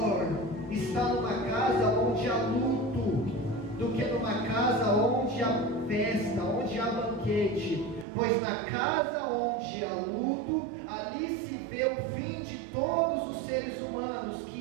estar numa casa onde há luto do que numa casa onde há festa, onde há banquete. Pois na casa onde há luto, ali se vê o fim de todos os seres humanos,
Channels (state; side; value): drops out; left; at 8.1 s